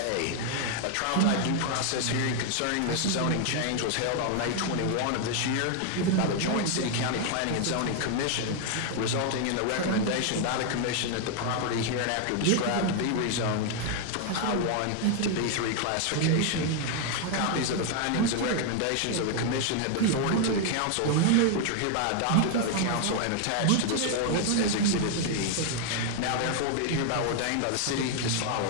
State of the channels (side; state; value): both; different; correlation 0.00